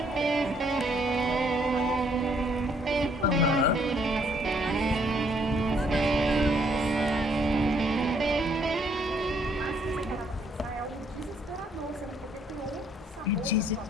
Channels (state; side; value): normal; both; correlation 0.67